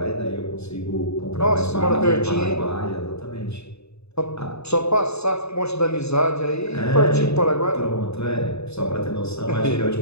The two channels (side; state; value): right; late; 0.80 ms